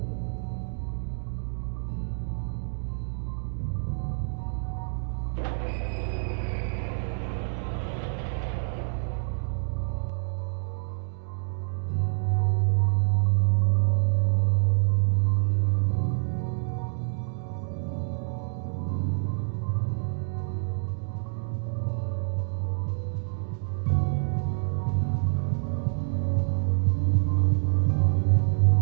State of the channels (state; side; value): silent; left; digital silence